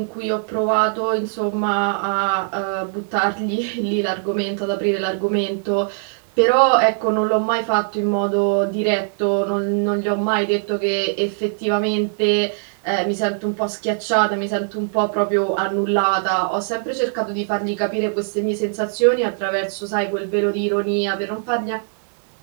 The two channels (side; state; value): left; silent; digital silence